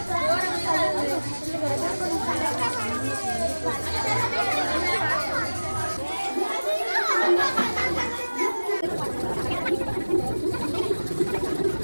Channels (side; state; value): both; inverted; correlation -1.00